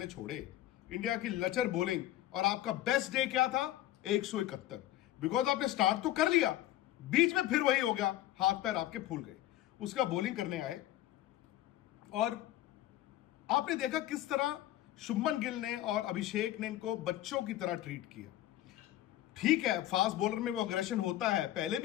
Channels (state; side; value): quieter; right; 14.1 dB